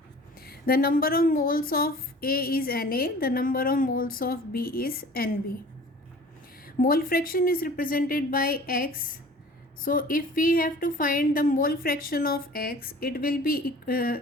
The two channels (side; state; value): both; normal; correlation 0.45